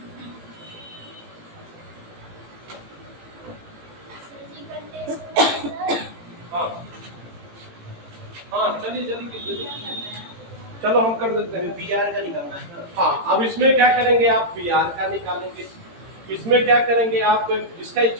हाँ हाँ चलिए जल्दी चलो हम कर देते हैं। PR का निकालना है। हाँ अब इसमें क्या करेंगे आप? Br का निकालेंगे। इसमें क्या करेंगे आप? जिसका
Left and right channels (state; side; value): late; left; 18 ms